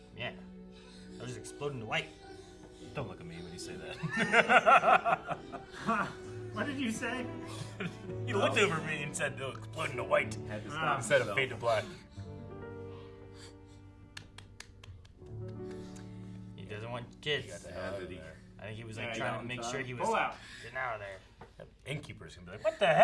Yeah. I was just exploding to white. Don't look at me when you say that. What did you say? He looked over me and said, "No, exploding to white." Had to stop Instead of himself. fade to black. He doesn't want kids. Got the hell out of there. I think he was like Yeah, trying got to make him, sure son. he was Pull out. getting out of there. That innkeeper's gonna be like, "What the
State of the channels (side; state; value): both; identical; correlation 1.00